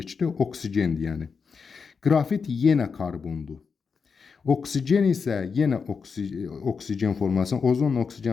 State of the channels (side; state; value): right; quieter; 5.5 dB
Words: oksigendir yəni. Qrafit yenə karbondur. Oksigen isə yenə oksigen formulasında, ozonla